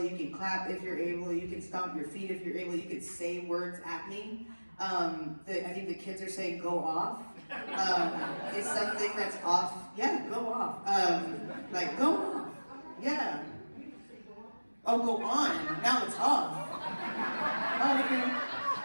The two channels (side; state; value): both; inverted; correlation -1.00